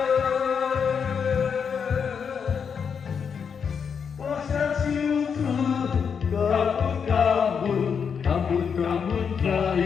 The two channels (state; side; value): quieter; right; 6.6 dB